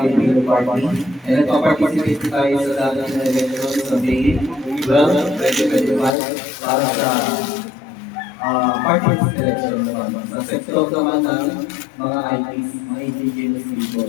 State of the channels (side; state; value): right; drops out; at 6.2 s